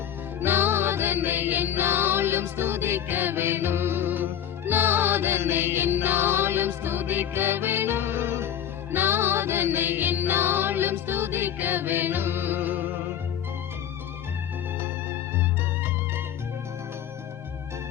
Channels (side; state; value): right; quieter; 9.9 dB